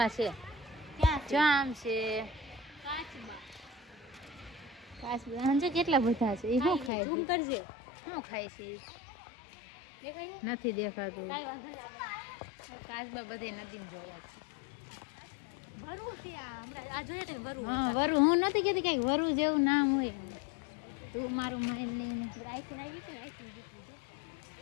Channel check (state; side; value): drops out; right; at 6.9 s